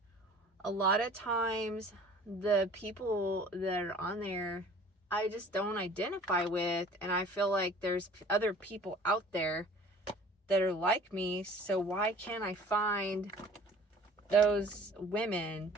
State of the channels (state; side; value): normal; both; correlation 0.48